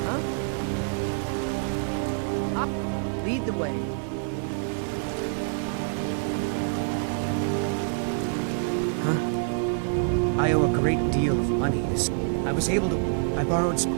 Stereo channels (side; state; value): left; silent; digital silence